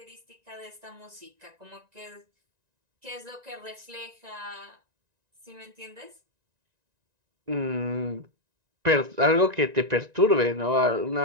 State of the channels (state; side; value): late; left; 1.9 ms